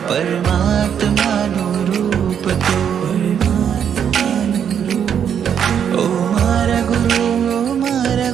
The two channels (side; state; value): left; quieter; 8.4 dB